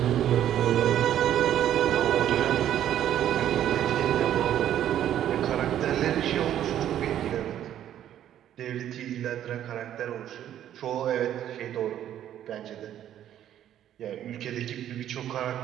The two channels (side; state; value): left; quieter; 11.1 dB